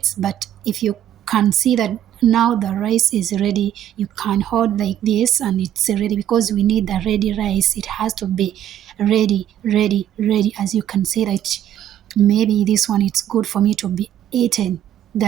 but if you can see that now the rice is ready. You can hold like this and it's ready because we need the ready rice. It has to be ready, ready, ready. As you can see that maybe this one it's good for me to be eaten.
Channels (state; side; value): quieter; left; 11.1 dB